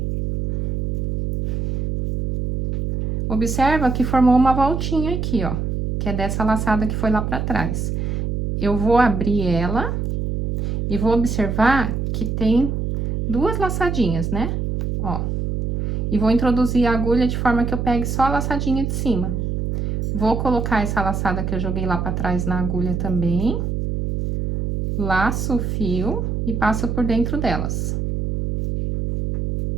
Observa que formou uma voltinha aqui, ó, que é dessa laçada que foi lá pra trás. Eu vou abrir ela e vou observar que tem 2 laçadinhas, né? Ó. E vou introduzir a agulha de forma que eu pegue só a laçadinha de cima. Vou colocar essa laçada que eu joguei lá pra trás na agulha também. Laço o fio e passo por dentro delas.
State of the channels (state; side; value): noise; right; hum, 1 dB below the sound